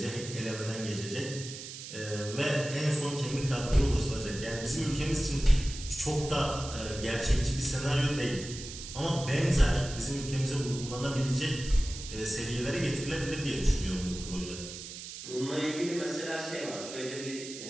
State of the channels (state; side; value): noise; right; hiss, 10 dB below the sound